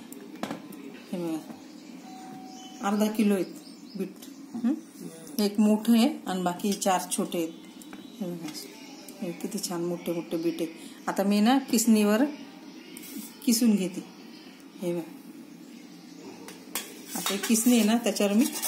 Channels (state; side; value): identical; both; correlation 1.00